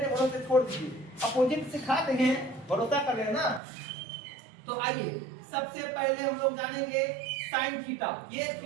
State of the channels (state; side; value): drops out; left; at 3.6 s